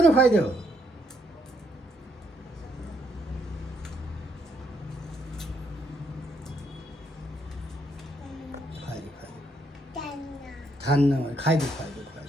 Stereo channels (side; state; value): both; normal; correlation 0.73